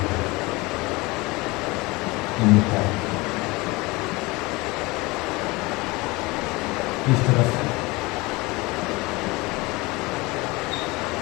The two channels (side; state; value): right; quieter; 23.5 dB